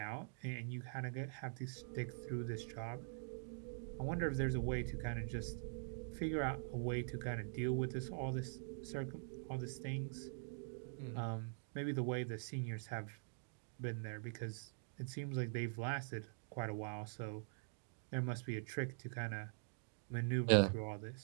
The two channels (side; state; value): left; silent; digital silence